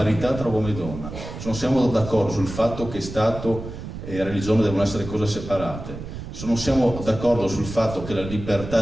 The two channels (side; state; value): right; noise; rumble, 10 dB below the sound